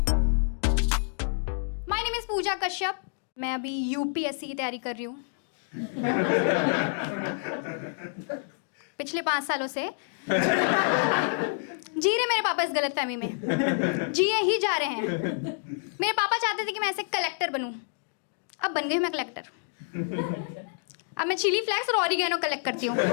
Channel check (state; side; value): silent; right; digital silence